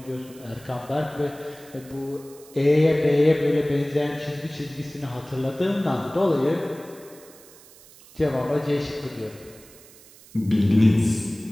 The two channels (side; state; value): right; noise; hiss, 23 dB below the sound